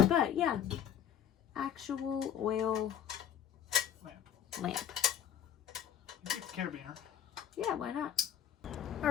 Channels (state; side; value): quieter; right; 9.7 dB